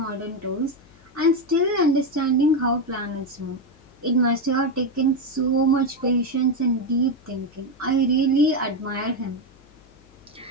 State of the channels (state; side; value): noise; left; hum, 27 dB below the sound